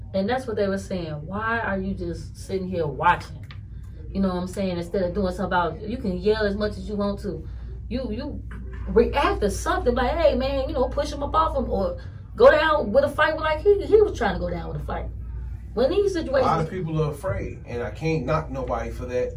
And that's what they were saying. Why are you just sitting here watching? You know what I'm saying? Instead of doing something about it, you can yell as much as you want to. You react to something like, hey man, you know, push him up off him or go down with a fight like he was trying to go down with a fight. When these situations, A lot of people are afraid, and I can't knock nobody for that.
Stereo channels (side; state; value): both; identical; correlation 1.00